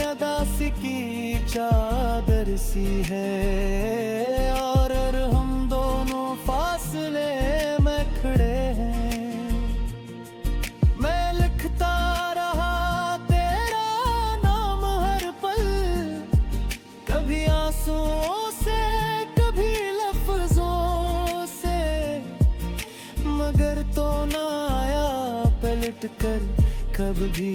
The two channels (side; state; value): both; identical; correlation 1.00